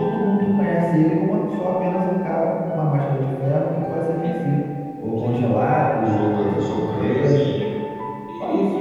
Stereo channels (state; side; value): identical; both; correlation 1.00